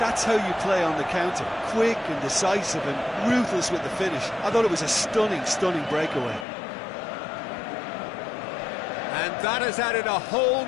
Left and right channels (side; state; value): right; drops out; at 6.5 s